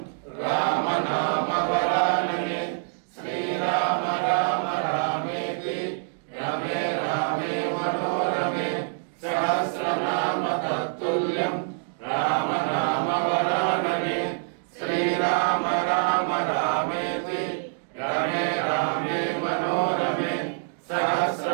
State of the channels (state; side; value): silent; left; digital silence